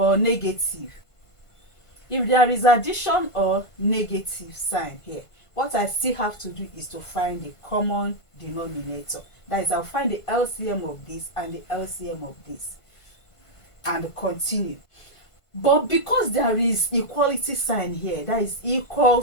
negative, if there is addition or negative sign here, what I still have to do is to find the common denominator. That is, I'll find the LCM of this and the LCM of this and continue. But because there is equality sign here, that is equal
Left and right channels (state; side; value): late; right; 1.5 ms